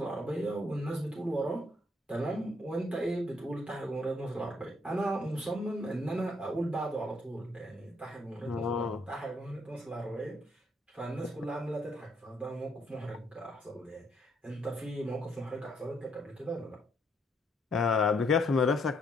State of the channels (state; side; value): normal; both; correlation 0.71